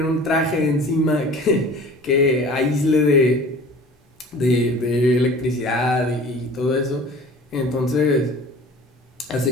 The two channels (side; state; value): both; normal; correlation 0.43